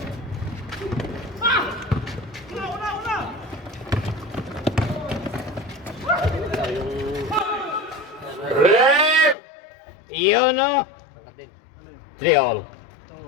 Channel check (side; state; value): right; drops out; at 9.3 s